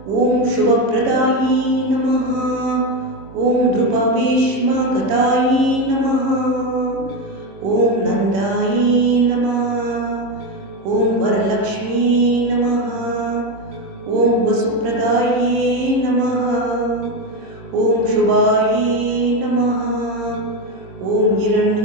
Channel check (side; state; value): left; late; 26 ms